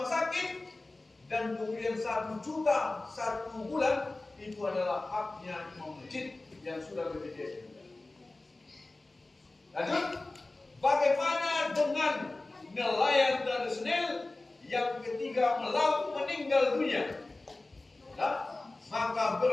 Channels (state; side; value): quieter; right; 3.0 dB